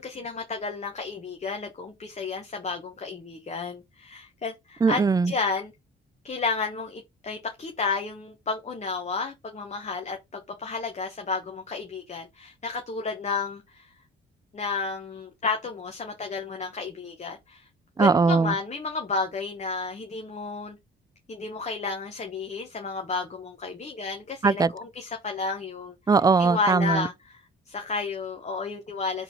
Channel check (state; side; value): normal; both; correlation 0.36